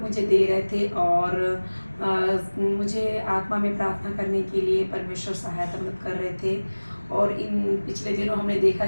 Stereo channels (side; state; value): both; inverted; correlation -1.00